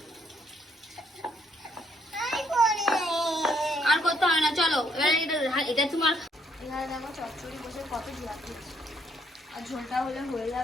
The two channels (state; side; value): normal; both; correlation 0.69